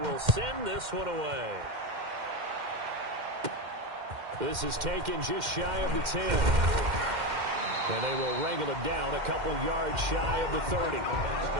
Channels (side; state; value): left; late; 2.1 ms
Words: send this one away. This is taken just shy of the 10. And they will wrangle it down a couple yards shy of the 30.